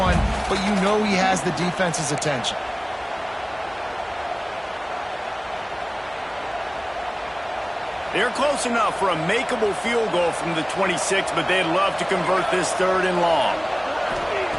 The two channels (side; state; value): both; identical; correlation 1.00